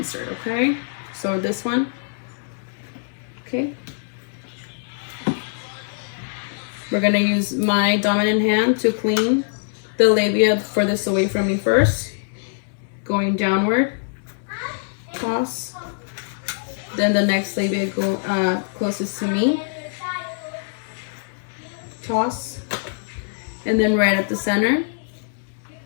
Okay, so this one. Okay. We're gonna use my dominant hand to clean the labia furthest away from me first. Going downward, toss. Then the next labia go closest to me, toss. And then right at the center,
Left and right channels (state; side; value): silent; right; digital silence